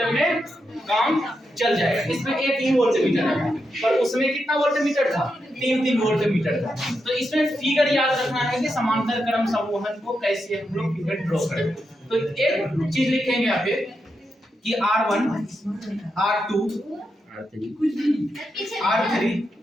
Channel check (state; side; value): normal; both; correlation 0.85